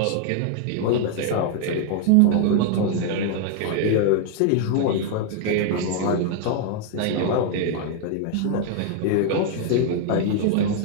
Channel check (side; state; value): both; different; correlation 0.00